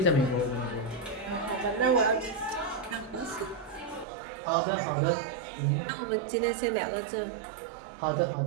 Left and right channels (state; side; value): drops out; left; at 4.0 s